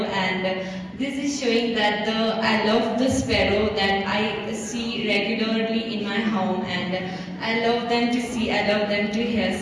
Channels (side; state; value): both; identical; correlation 1.00